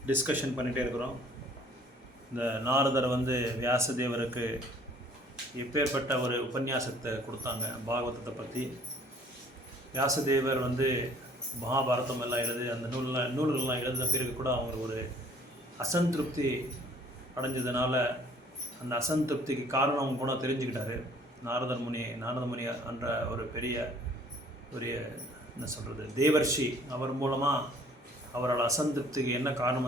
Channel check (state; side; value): normal; both; correlation 0.56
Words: டிஸ்கஷன் பண்ணிகிட்டே இருக்கிறோம். இந்த நாரதர் வந்து வியாசதேவருக்கு எப்பேற்பட்ட ஒரு உபன்யாசத்தை கொடுத்தாங்க பாகவதத்தை பற்றி. வியாசதேவர் வந்து மகாபாரதம் எல்லாம் எழுதி அந்த நூல்கள்லாம் எழுதின பிறகு கூட அவங்க ஒரு அசந்திருப்தி அடைஞ்சதுனால அந்த அசந்திருப்திக்கு காரணம் அவங்க கூட தெரிஞ்சுக்கிட்டாரு. நாரத முனி என்ற ஒரு பெரிய ஒரு என்ன சொல்கிறது தேவர்ஷி, அவர் மூலமாக அவரோட அசந்திருப்திக்கு என்ன